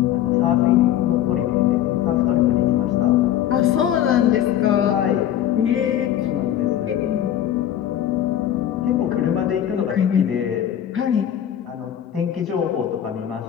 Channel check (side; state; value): right; quieter; 11.1 dB